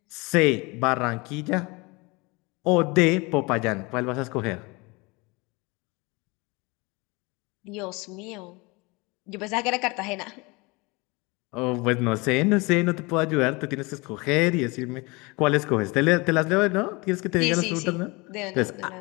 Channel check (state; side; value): quieter; right; 25.9 dB